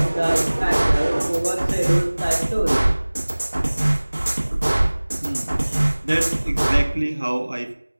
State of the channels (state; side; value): inverted; both; correlation -1.00